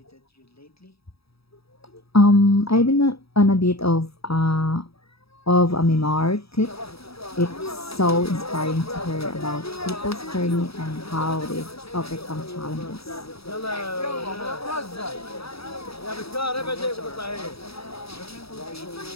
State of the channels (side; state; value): right; late; 0.77 ms